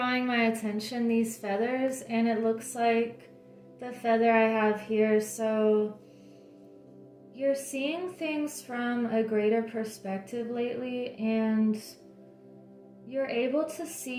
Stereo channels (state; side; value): identical; both; correlation 1.00